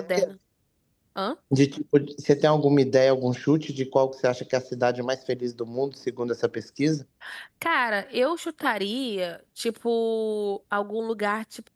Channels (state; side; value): identical; both; correlation 1.00